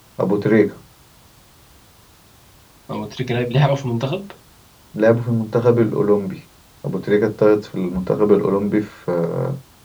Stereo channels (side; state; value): both; identical; correlation 1.00